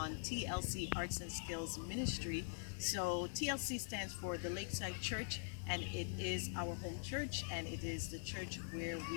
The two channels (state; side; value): silent; right; digital silence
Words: TLC Arts and Skills Ministry. So TLC stands for the Lakeside Church, and it is our home church, and it is the church where